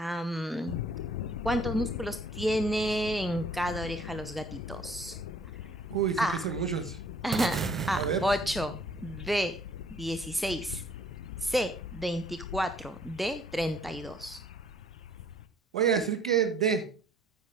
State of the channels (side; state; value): both; normal; correlation 0.58